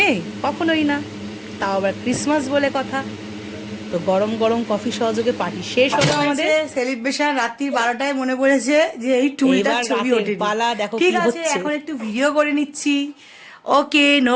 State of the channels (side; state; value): both; identical; correlation 1.00